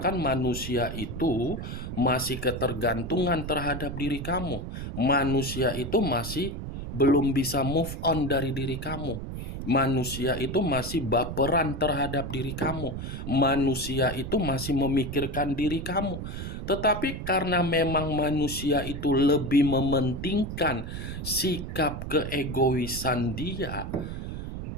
manusia itu masih ketergantungan terhadap diri kamu. Manusia itu masih belum bisa move on dari diri kamu. Manusia itu masih baperan terhadap diri kamu. Manusia itu masih memikirkan diri kamu. Tetapi karena memang manusia itu lebih mementingkan sikap keegoisan dia,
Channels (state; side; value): noise; right; rumble, 6 dB below the sound